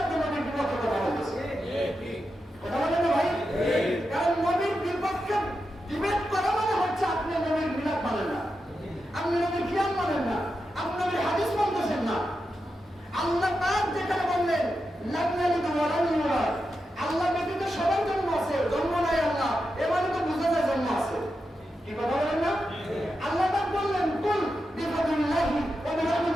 আপনি নবীর বিপক্ষে কথা বলতেছেন। কথা বলেন না ভাই? কারণ নবীর বিপক্ষে ডিবেট করা মানে হচ্ছে আপনি নবীর মিলাদ মানেন না, আপনি নবীর কিয়াম মানেন না, আপনি নবীর হাদিস মানতেছেন না। আল্লাহ পাক যেখানে বললেন লাগনালিকা ওয়ালাল্লাহ, আল্লাহ ব্যতীত সবার জন্ম আছে, জন্ম নাই আল্লাহ, এবারে তো বুঝা যায় জন্ম আছে। কি কথা বলেন না? আল্লাহ পাক বললেন কুল বিফাদিল্লাহি ওয়া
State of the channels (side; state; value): both; normal; correlation 0.88